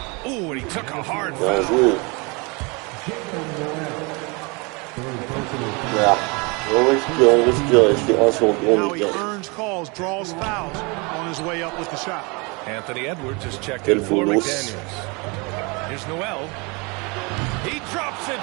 Ooh, and he took a hard foul. Now he earns calls, draws fouls on his way up with the shot. Anthony Edwards has checked in for McDaniels. Here's Noel. He drops it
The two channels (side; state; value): left; quieter; 28.9 dB